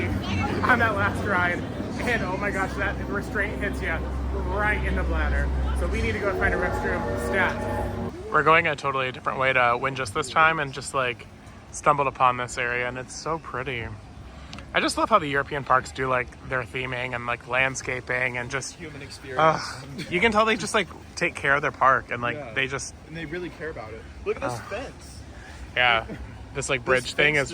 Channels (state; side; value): identical; both; correlation 1.00